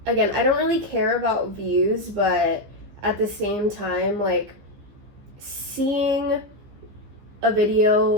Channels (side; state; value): left; late; 15 ms